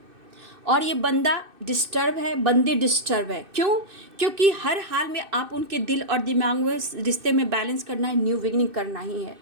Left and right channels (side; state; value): left; late; 2.6 ms